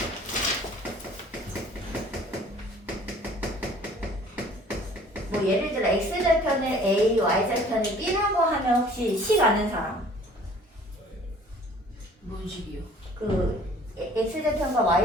뭐 예를 들어 x 절편을 a, y 절편을 b라고 하면 혹시 식 아는 사람? 뭔 식이요? 그 x 절편과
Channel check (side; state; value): both; normal; correlation 0.52